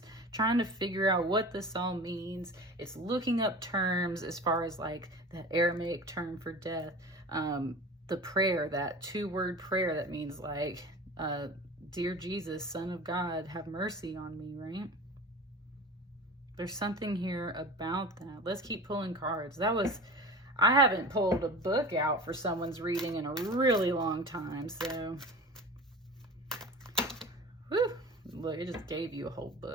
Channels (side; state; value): both; normal; correlation 0.35